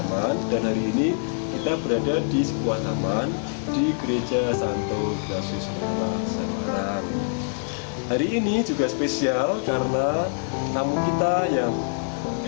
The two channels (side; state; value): right; silent; digital silence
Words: dan hari ini kita berada di sebuah taman di Gereja Santo Ignatius Loyola Semarang. Hari ini juga spesial karena tamu kita yang